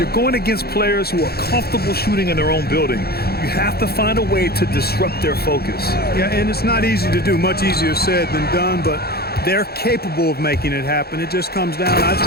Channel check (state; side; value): late; right; 0.46 ms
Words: going against players who are comfortable shooting in their own building. You have to find a way to disrupt their focus. Yeah, and it's not easy to do. Much easier said than done, but they're capable of making it happen. It just comes down, I